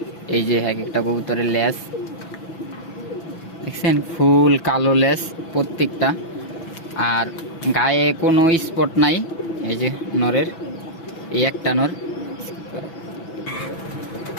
এই যে এক একটা কবুতরের লেজ দেখছেন, ফুল কালো লেজ প্রত্যেকটা, আর গায়ে কোনো স্পট নাই। এই যে নরের এই একটা নর।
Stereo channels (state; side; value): late; right; 6.0 ms